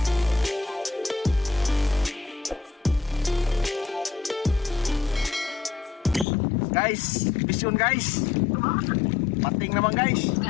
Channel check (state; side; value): drops out; right; at 6.2 s